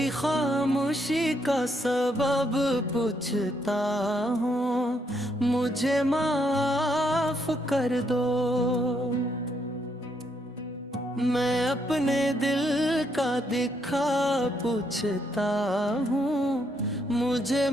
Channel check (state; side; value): normal; both; correlation 0.75